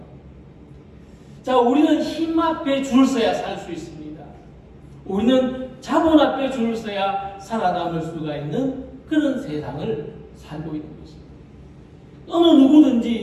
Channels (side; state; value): both; identical; correlation 1.00